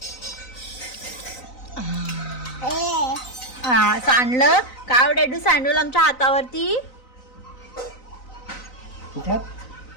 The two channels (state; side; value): late; right; 3.9 ms